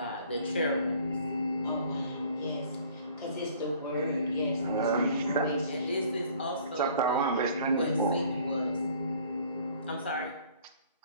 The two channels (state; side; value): inverted; both; correlation -0.54